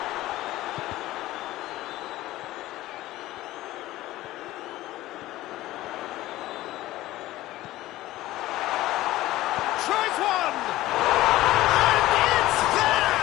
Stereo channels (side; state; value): right; quieter; 16.3 dB